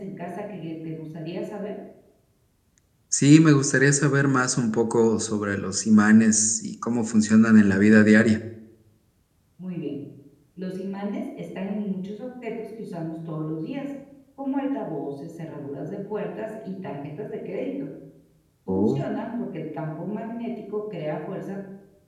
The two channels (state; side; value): identical; both; correlation 1.00